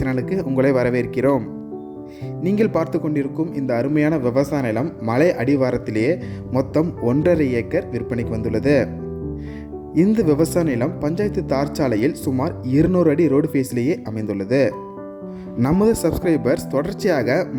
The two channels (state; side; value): identical; both; correlation 1.00